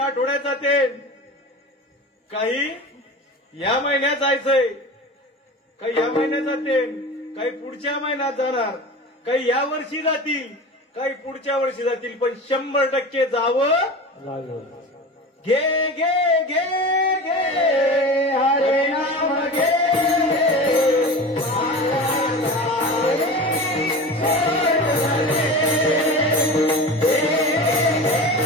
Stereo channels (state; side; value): normal; both; correlation 0.32